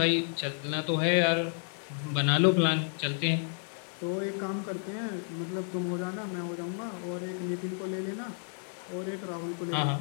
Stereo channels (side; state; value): right; silent; 57 dB below the other